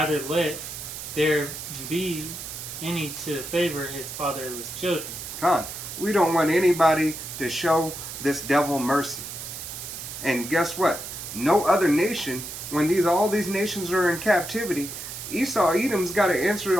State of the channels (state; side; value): noise; right; hiss, 9 dB below the sound